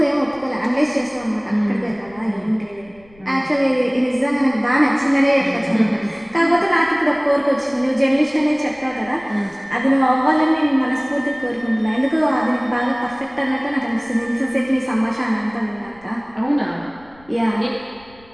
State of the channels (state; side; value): noise; left; rumble, 27 dB below the sound